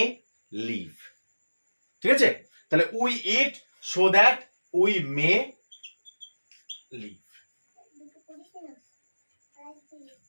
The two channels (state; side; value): inverted; both; correlation -1.00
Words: live. ঠিক আছে, তাহলে we eat so that we may live.